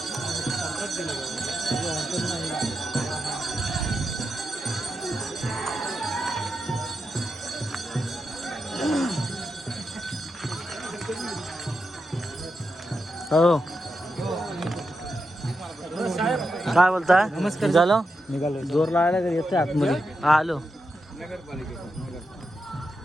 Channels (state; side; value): normal; both; correlation 0.87